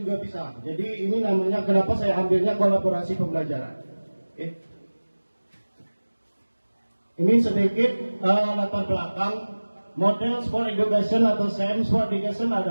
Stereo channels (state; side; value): inverted; both; correlation -1.00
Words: bisa. Jadi ini namanya kenapa saya ambilnya kolaborasi pembelajaran. Ini sedikit latar belakang model sport education atau SEM. Sport education